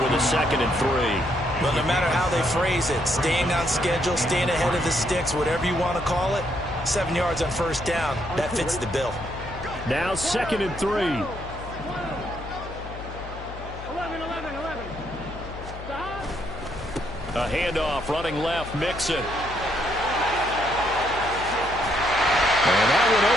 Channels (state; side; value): noise; left; hum, 12 dB below the sound